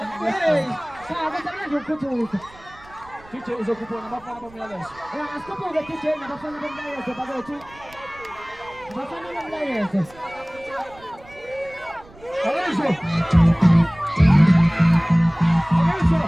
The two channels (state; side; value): noise; right; rumble, 24 dB below the sound